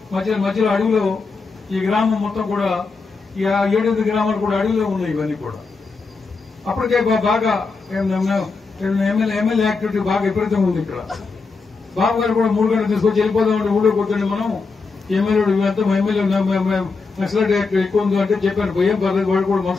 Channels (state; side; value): quieter; right; 4.3 dB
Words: మధ్యలో అడవిలో ఈ గ్రామం మొత్తం కూడా 7-8 గ్రామాలు కూడా అడవిలో ఉన్నాయి. ఇవన్నీ కూడా అప్పటికే బాగా ఎమ్మెల్యే యాక్టివిటీ బాగా విపరీతంగా ఉంది ఇక్కడ. బాబు గారు కూడా 3 గంటలు తీసుకొచ్చి వెళ్ళిపోదామంటే ఊళ్ళో కూర్చొని మనం ఎమ్మెల్యే ఇవంతా ఎమ్మెల్యే నక్సలైట్ యాక్ట్ ఎక్కువ ఉంది అంటే చెప్పాను. ఏం పర్లేదు, వాళ్ళు కూడా